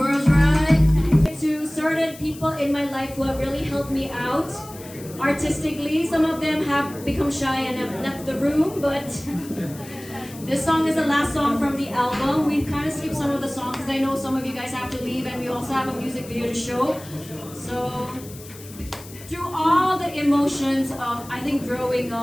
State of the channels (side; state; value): left; noise; hiss, 18 dB below the sound